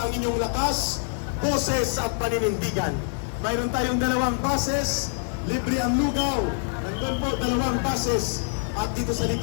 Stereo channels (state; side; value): silent; right; digital silence